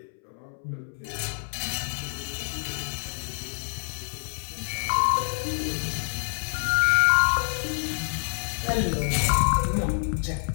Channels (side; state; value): right; silent; 60 dB below the other